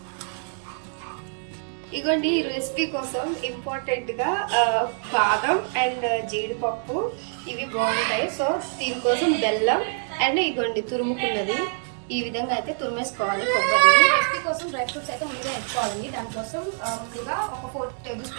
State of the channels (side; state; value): left; silent; 62 dB below the other